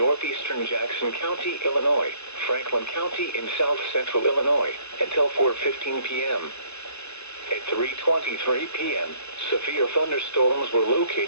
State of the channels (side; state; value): right; late; 0.81 ms